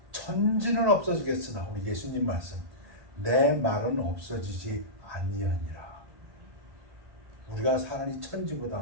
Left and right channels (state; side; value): late; left; 1.2 ms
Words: 천지는 없어지겠으나, 우리 예수님 말씀, 내 말은 없어지지 아니하니라. 우리가 사는 이